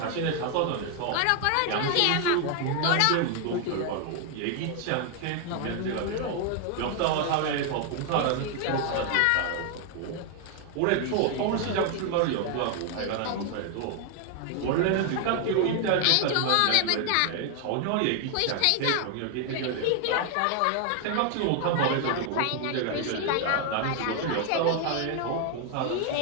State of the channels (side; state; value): both; different; correlation 0.00